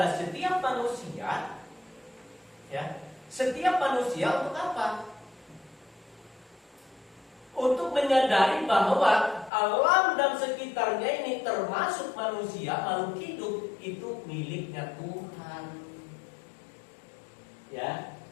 setiap manusia Ya, setiap manusia untuk apa? Untuk menyadari bahwa alam dan sekitarnya ini termasuk manusia, makhluk hidup itu miliknya Tuhan. Ya,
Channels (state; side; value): drops out; right; at 9.5 s